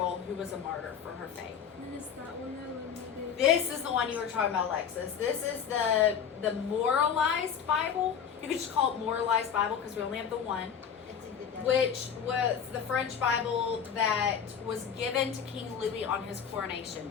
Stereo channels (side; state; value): right; quieter; 7.5 dB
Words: who was a martyr for her faith. And then is that one that limited? This is the one you were talking about, Alexis. This is the moralized Bible. You could just call it moralized Bible because we only have the one, It's a good day. which was the French Bible that was given to King Louis on his coronation